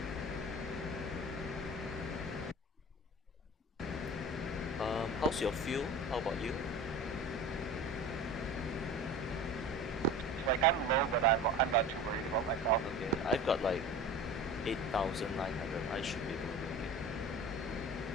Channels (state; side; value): normal; both; correlation 0.36